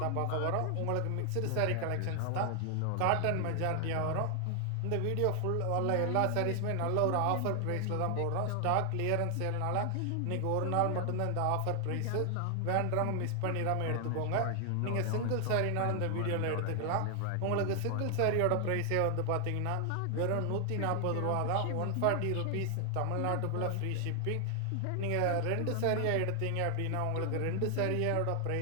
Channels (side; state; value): both; different; correlation 0.00